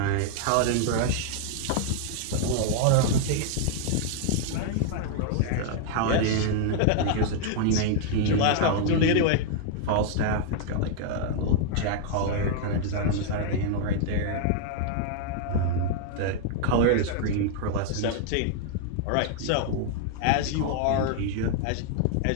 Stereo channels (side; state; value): both; different; correlation 0.00